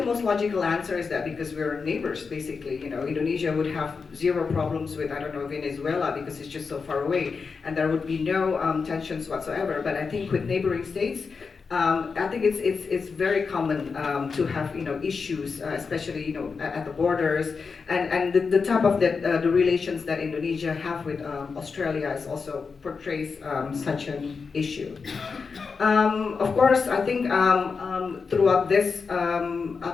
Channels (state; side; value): quieter; right; 5.1 dB